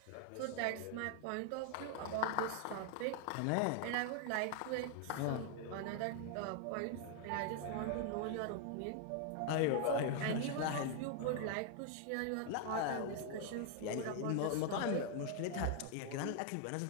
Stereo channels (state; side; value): different; both; correlation 0.00